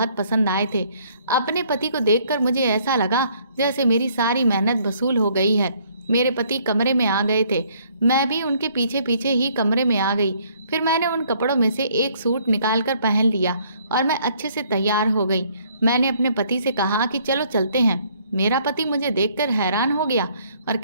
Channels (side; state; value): both; inverted; correlation -0.63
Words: पसंद आए थे। अपने पति को देखकर मुझे ऐसा लगा जैसे मेरी सारी मेहनत वसूल हो गई है। मेरे पति कमरे में आ गए थे। मैं भी उनके पीछे पीछे ही कमरे में आ गई। फिर मैंने उन कपड़ों में से एक सूट निकालकर पहन लिया और मैं अच्छे से तैयार हो गई। मैंने अपने पति से कहा कि चलो चलते हैं। मेरा पति मुझे देखकर हैरान हो गया और